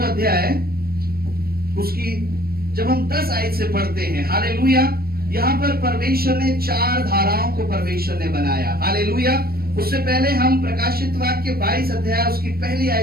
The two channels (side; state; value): left; late; 0.44 ms